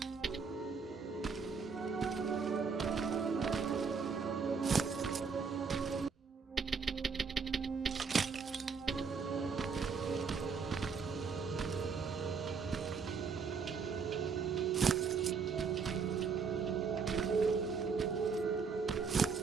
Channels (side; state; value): left; quieter; 5.6 dB